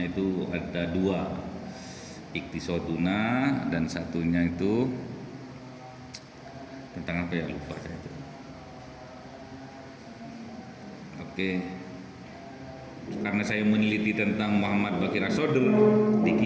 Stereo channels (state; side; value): identical; both; correlation 1.00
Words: itu ada 2, Iqtisaduna dan satunya itu tentang apa ya, lupa saya itu. Oke. Karena saya meneliti tentang Muhammad Baqir As-Sadr,